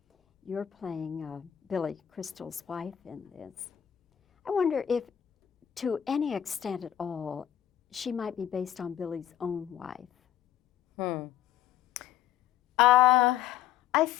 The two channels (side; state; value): right; quieter; 10.6 dB